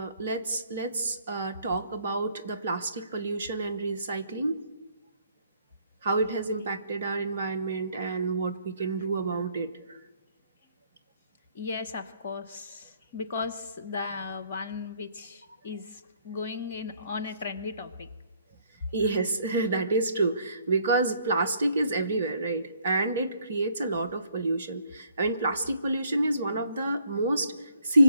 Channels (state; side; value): inverted; both; correlation -0.65